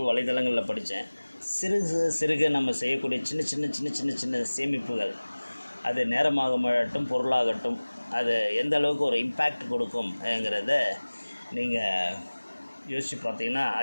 வலைதளங்களில் படித்தேன். சிறுக நம்ம செய்யக்கூடிய சின்ன சேமிப்புகள், அது நேரமாகட்டும் பொருளாகட்டும், அது எந்த அளவுக்கு ஒரு இம்பேக்ட் கொடுக்கும்ங்கிறத நீங்கள் யோசித்து பார்த்தீங்கன்னா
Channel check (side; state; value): both; inverted; correlation -1.00